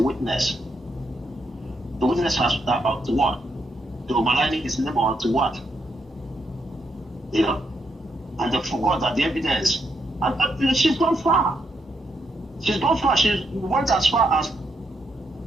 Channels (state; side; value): normal; both; correlation 0.79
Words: The witness has to what? To maligning his name or to what? And they forgot that the evidence. And she's gone far. She's gone far. She went as far as